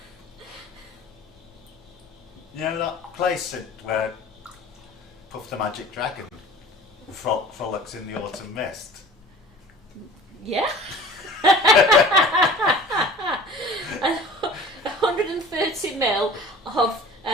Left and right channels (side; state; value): both; normal; correlation 0.43